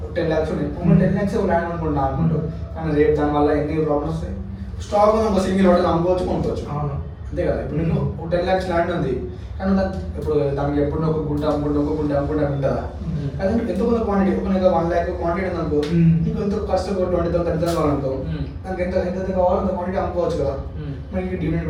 10 lakhs ఉన్నాయి, 10 lakhs ల్యాండ్ అనుకుంటున్నా అనుకుంటారు. కానీ రేపు దానివల్ల ఎన్ని ప్రాబ్లమ్స్ వస్తాయి. స్టాక్ ఒక సింగిల్ హోటల్ అమ్ముకోవచ్చు, కొనుక్కోవచ్చు, అంతే కదా. ఇప్పుడు నేను 10 lakhs ల్యాండ్ ఉంది, కానీ ఇప్పుడు దానికి ఎప్పుడు ఒక గుంట అమ్ముకుంటా ఉంటుందా. కానీ ఎంతో కొంత క్వాంటిటీ, ఒక 1 lakh క్వాంటిటీ ఉంది అనుకో, నీకు ఎంతో ఖర్చు 20,000 30,000 కావాలనుకో, దానికి ఎంత కావాలో అంత క్వాంటిటీ అమ్ముకోవచ్చు కదా. మనకి డివిడెండ్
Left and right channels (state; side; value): identical; both; correlation 1.00